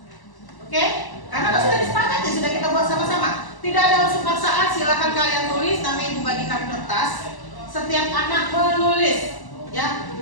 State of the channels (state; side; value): late; right; 1.1 ms